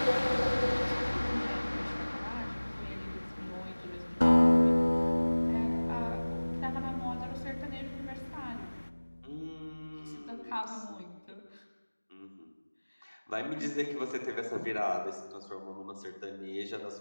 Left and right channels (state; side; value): inverted; both; correlation -1.00